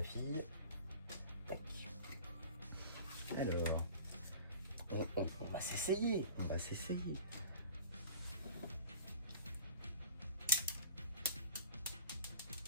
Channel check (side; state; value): both; inverted; correlation -0.41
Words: fille. Tac. Alors, on va s'essayer, on va s'essayer.